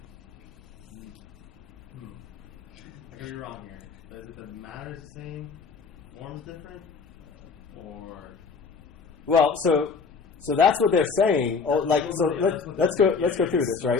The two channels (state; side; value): quieter; right; 5.2 dB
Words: I could be wrong here. But is it that the matter is the same, form is different, or... Well, so that's what they're saying. Oh, like, so let's go through this,